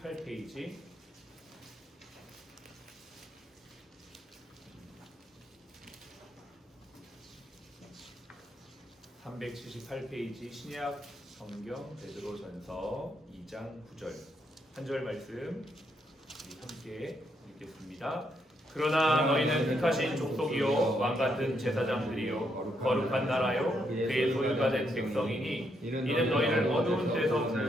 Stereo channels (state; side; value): normal; both; correlation 0.77